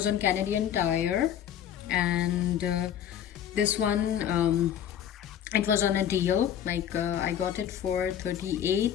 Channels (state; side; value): quieter; right; 9.8 dB